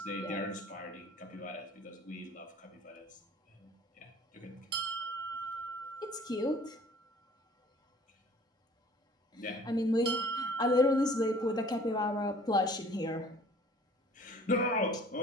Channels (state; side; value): normal; both; correlation 0.51